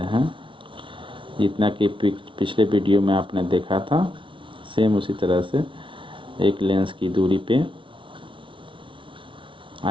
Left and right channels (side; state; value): left; late; 0.25 ms